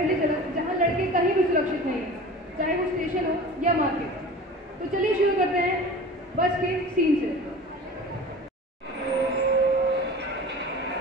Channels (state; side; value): normal; both; correlation 0.38